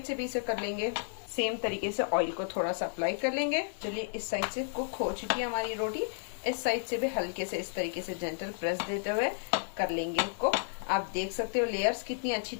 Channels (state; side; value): silent; right; 56 dB below the other